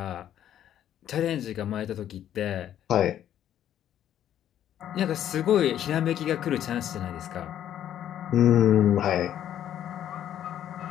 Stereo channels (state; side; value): quieter; right; 10.9 dB